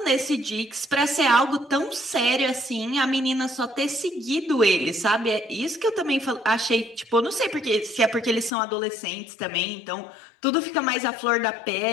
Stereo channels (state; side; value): drops out; right; at 8.5 s